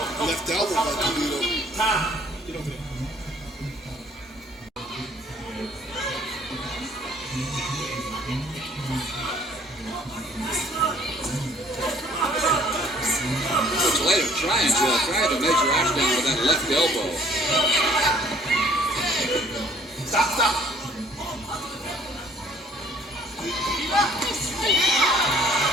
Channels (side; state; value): both; normal; correlation 0.58